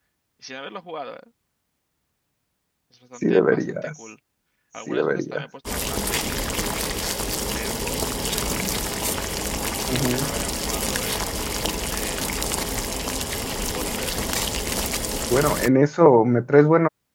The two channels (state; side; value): identical; both; correlation 1.00